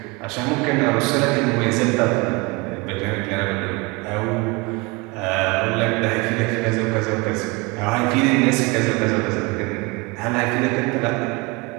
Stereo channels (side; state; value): left; quieter; 26.7 dB